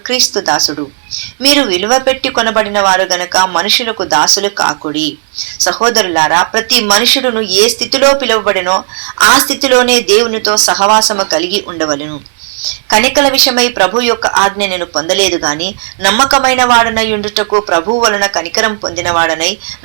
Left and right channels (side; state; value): left; silent; digital silence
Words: క్రీస్తు దాసుడు. మీరు విలువ పెట్టి కొనబడిన వారు గనక మనుషులకు దాసులు కాకుడి. సహోదరులారా, ప్రతి మనుషుడును ఏ స్థితిలో పిలువబడినో ఆ స్థితిలోనే దేవునితో సహవాసము కలిగి ఉండవలను. కనికల విషయమై ప్రభు యొక్క ఆజ్ఞ నేను పొందలేదు గాని నమ్మకమైన వాడనై ఉండుటకు ప్రభువు వలన కనికరం పొందినవాడనై